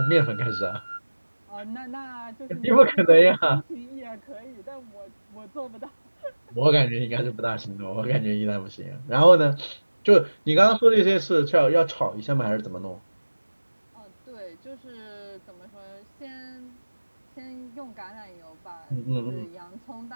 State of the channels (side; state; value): both; inverted; correlation -1.00